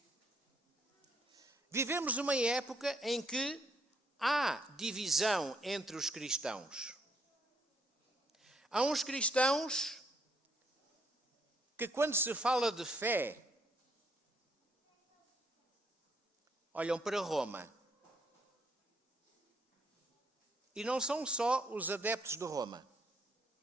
Vivemos uma época em que há divisão entre os cristãos. Há uns cristãos que, quando se fala de fé, olham para Roma. E não são só os adeptos de Roma.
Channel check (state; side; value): normal; both; correlation 0.71